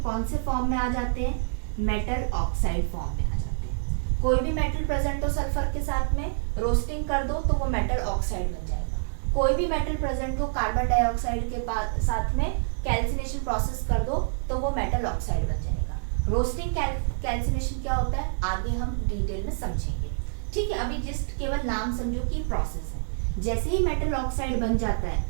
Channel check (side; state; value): left; silent; digital silence